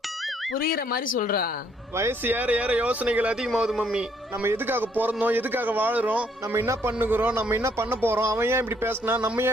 புரியுற மாதிரி சொல்றா. வயசு ஏற ஏற யோசனைகள் அதிகமாகுது மம்மி. நம்ம எதுக்காக பிறந்தோம், எதுக்காக வாழுறோம், நம்ம என்ன பண்ணுகிறோம், நம்ம என்ன பண்ண போறோம், அவன் ஏன் இப்படி பேசினா, நம்ம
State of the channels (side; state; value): both; normal; correlation 0.67